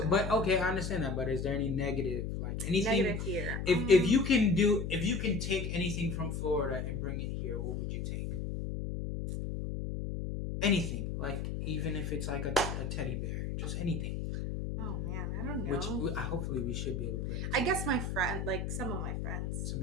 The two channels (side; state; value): left; noise; hum, 3 dB below the sound